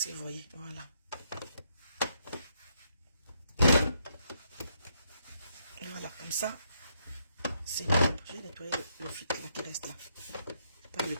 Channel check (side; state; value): both; inverted; correlation -0.75